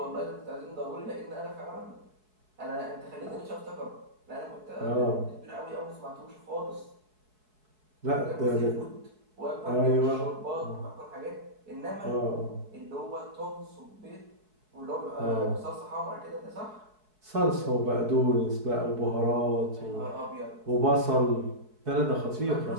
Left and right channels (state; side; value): late; left; 4.7 ms